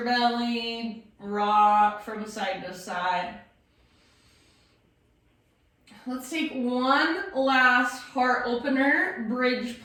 belly. Rock from side to side. Let's take one last heart opener, bridge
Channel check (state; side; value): identical; both; correlation 1.00